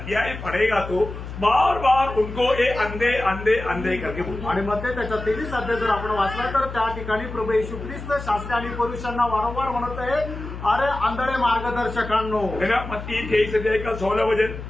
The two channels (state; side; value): noise; left; hum, 9 dB below the sound